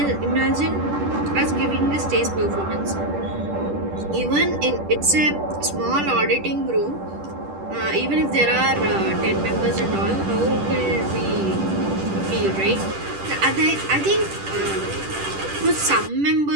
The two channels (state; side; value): late; left; 10 ms